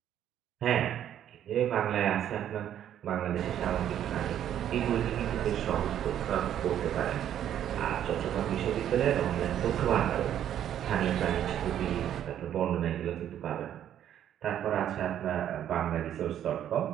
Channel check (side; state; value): left; quieter; 10.5 dB